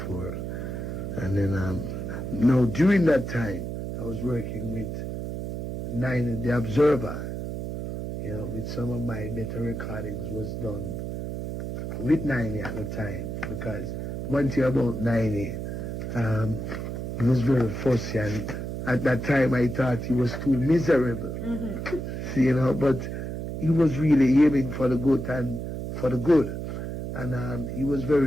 And then, now during that time, I was working with Niney, The Observer. With some of my better recordings was done with Niney at the time. Because one thing about Niney, he was very fussy, and at that time I thought he was too miserable. But he was really aiming for the good and for the good. And he was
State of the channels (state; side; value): noise; right; hum, 5 dB below the sound